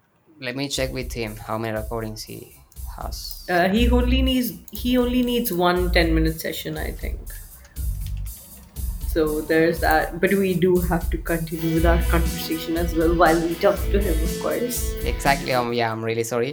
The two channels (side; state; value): both; identical; correlation 1.00